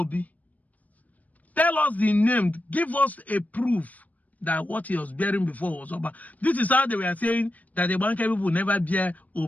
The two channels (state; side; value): late; right; 0.073 ms